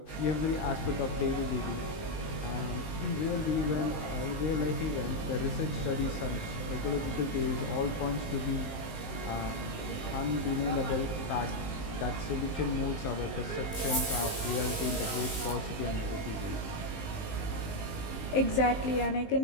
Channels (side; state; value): right; late; 19 ms